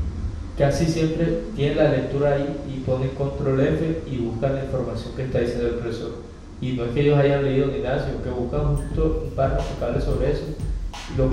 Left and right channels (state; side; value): identical; both; correlation 1.00